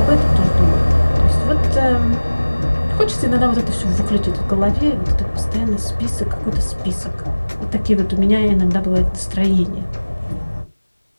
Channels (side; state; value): both; inverted; correlation -1.00